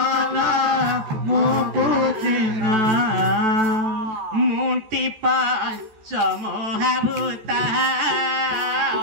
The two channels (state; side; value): late; left; 14 ms